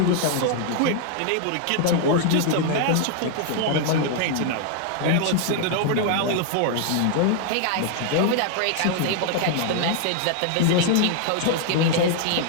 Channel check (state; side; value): different; both; correlation 0.00